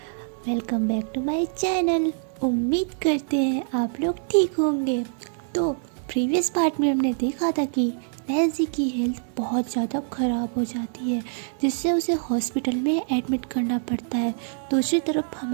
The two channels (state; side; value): silent; left; digital silence